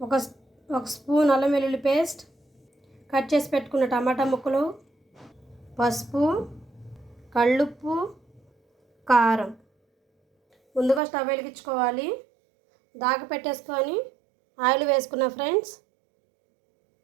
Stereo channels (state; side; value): drops out; left; at 11.0 s